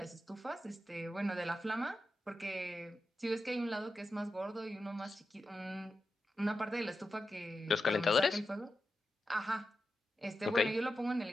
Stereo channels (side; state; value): both; normal; correlation 0.90